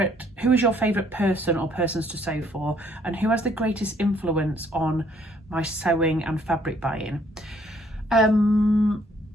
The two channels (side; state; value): both; normal; correlation 0.64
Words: your favourite person or persons to sew for, and who has the greatest influence on my sewing and fabric buying.